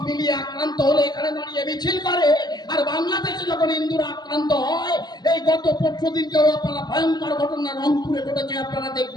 মিলিয়ে আক্রান্ত হলে এখানে দাঁড়িয়ে মিছিল করে। আর বাংলাদেশে যখন হিন্দুরা আক্রান্ত হয়, এই গত 25 দিনকেও আপনারা ভয়ঙ্কর ঘটনা রংপুরে ঘটেছে, আপনারা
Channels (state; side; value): late; right; 0.20 ms